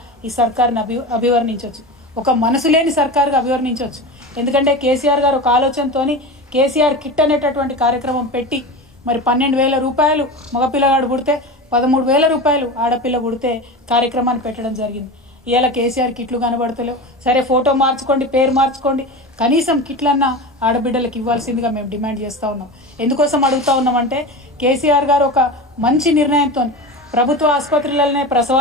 ఈ సర్కారుని అభివర్ణించవచ్చు, ఒక మనసు లేని సర్కారుగా అభివర్ణించవచ్చు. ఎందుకంటే కేసీఆర్ గారు ఒక ఆలోచనతోని కేసీఆర్ కిట్ అనేటటువంటి కార్యక్రమం పెట్టి మరి 12,000 రూపాయలు మగపిల్లగాడు పుడితే 13,000 రూపాయలు ఆడపిల్ల పుడితే కార్యక్రమాన్ని పెట్టడం జరిగింది. ఇవాళ కేసీఆర్ కిట్లు కనబడతలేవు. సరే ఫోటో మార్చుకోండి, పేరు మార్చుకోండి, కనీసం కిట్లన్నా ఆడబిడ్డలకు ఇవ్వాల్సిందిగా మేము డిమాండ్ చేస్తూ ఉన్నాం. ఎందుకోసం అడుగుతూ ఉన్నామంటే కేసీఆర్ గారు ఒక మంచి నిర్ణయంతో ప్రభుత్వ ఆసుపత్రులలోనే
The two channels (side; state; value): both; normal; correlation 0.27